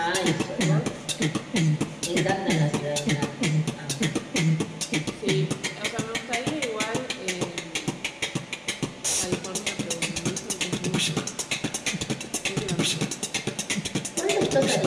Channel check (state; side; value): identical; both; correlation 1.00